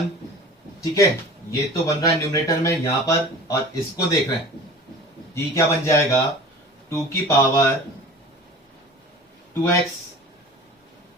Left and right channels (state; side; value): normal; both; correlation 0.40